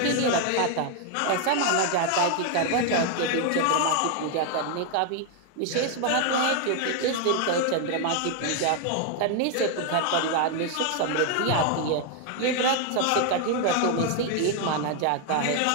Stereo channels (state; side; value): different; both; correlation 0.01